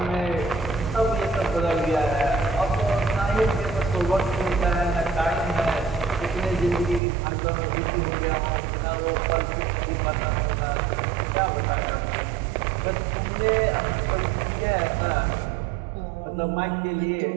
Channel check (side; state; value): left; drops out; at 7.0 s